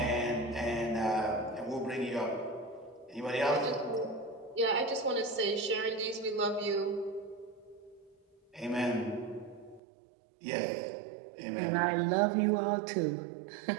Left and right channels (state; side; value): drops out; left; at 9.8 s